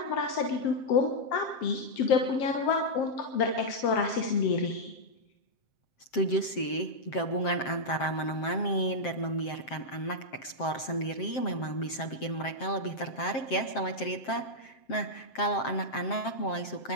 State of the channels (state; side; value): late; right; 7.6 ms